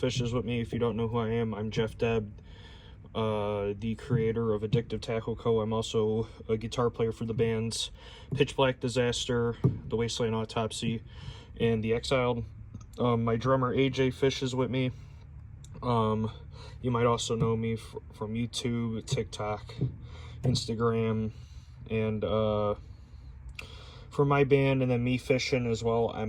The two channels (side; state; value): both; identical; correlation 1.00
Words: with me. If you don't know who I am, I'm Jeff Deb, the creator of Addictive Tackle Co. I'm also a guitar player for the bands Pitch Black Disaster, The Wasteland Autopsy, and The Exiled. My drummer AJ fishes with me. You might also know me from YouTube, TikTok, Instagram, and for my band, and then me fishing as well.